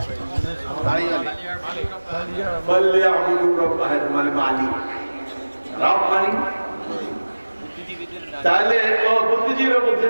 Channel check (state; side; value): inverted; both; correlation -1.00